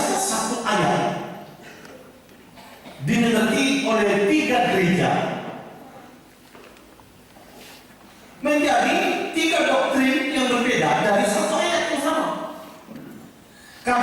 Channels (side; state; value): both; identical; correlation 1.00